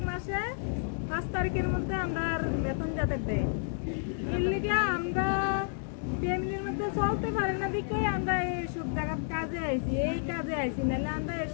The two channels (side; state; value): right; silent; digital silence